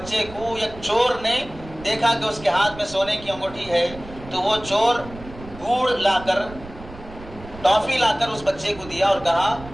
کو ایک چور نے دیکھا کہ اس کے ہاتھ میں سونے کی انگوٹھی ہے، تو وہ چور گڑ لا کر، ٹافی لا کر اس بچے کو دیا اور کہا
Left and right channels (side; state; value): right; noise; rumble, 16 dB below the sound